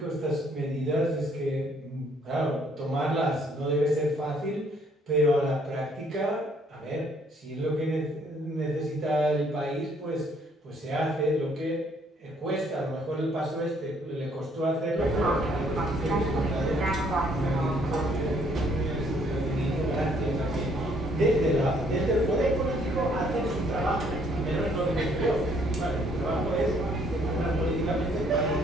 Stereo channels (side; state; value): both; normal; correlation 0.65